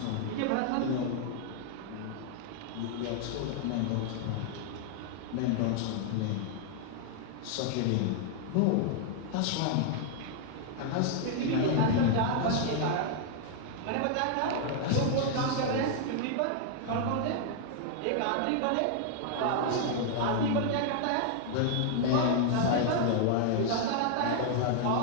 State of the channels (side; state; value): both; different; correlation 0.00